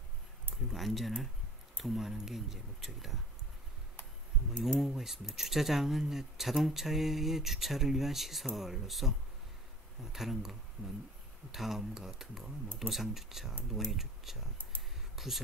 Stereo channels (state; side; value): normal; both; correlation 0.46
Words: 그리고 안전을 도모하는 게 이제 목적이다. 용어가 있습니다. 주차장은 자동차의 주차를 위한 시설로서 다른 거, 다음과 같은 거, 노상주차, 노예주차,